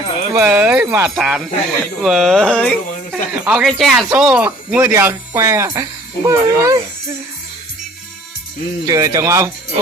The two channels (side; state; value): both; normal; correlation 0.54